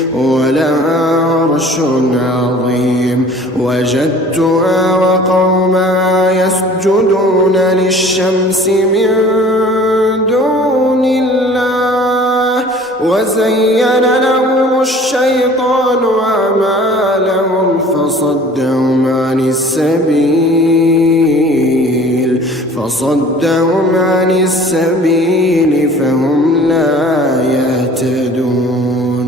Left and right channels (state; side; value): normal; both; correlation 0.48